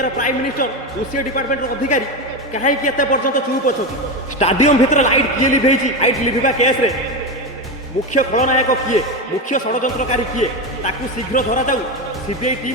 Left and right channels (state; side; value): normal; both; correlation 0.16